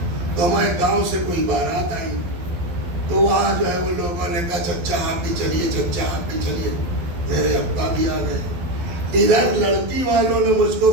تو ہمارے گاؤں سے کوئی بارات آئی تو وہاں جو ہے وہ لوگوں نے کہا چچا آپ بھی چلیے، چچا آپ بھی چلیے، میرے ابا بھی آ گئے۔ ادھر لڑکی والوں نے مجھ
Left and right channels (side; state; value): left; late; 12 ms